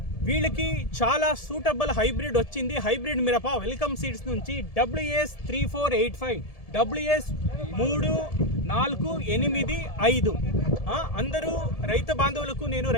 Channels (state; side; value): late; right; 1.7 ms